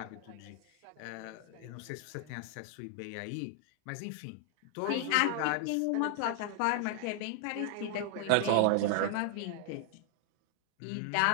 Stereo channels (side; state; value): both; different; correlation 0.00